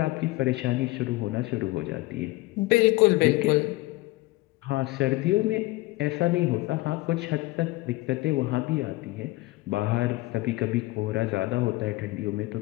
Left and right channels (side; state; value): right; quieter; 20.1 dB